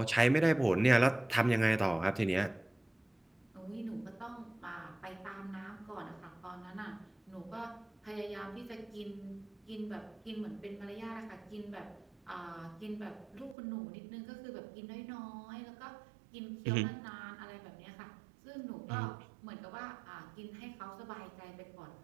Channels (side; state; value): left; drops out; at 13.6 s